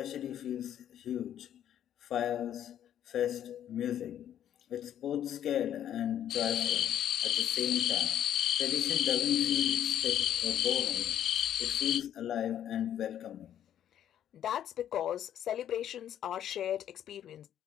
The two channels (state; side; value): quieter; right; 10.4 dB